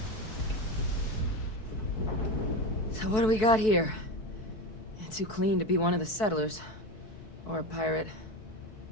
So what do we got here? It's too clean to be one of the settlers. Or a pirate.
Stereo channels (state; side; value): late; right; 4.6 ms